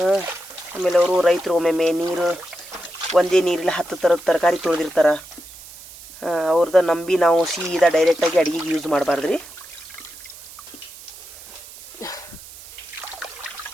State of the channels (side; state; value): right; noise; hiss, 17 dB below the sound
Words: ಆಮೇಲೆ ಅವರು ರೈತರು ಒಮ್ಮೊಮ್ಮೆ ನೀರು ಒಂದೇ ನೀರಲ್ಲಿ 10 ಥರದ ತರಕಾರಿ ತೊಳೆದಿರ್ತಾರೆ. ಅವ್ರದ್ದು ನಂಬಿ ನಾವು ಸೀದಾ ಡೈರೆಕ್ಟಾಗಿ ಅಡುಗೆಗೆ ಯೂಸ್ ಮಾಡಬಾರ್ದು ರೀ.